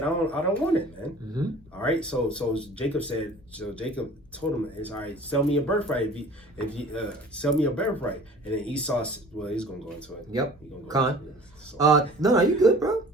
I don't want it, man. Mm-hmm. All right, so Jacob told him, it's all right. Sell me a birthright. If you sell me a birthright, and then Esau, well, he's gonna go into it. Yep. Into it. So. No, you good, bro.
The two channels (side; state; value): both; normal; correlation 0.47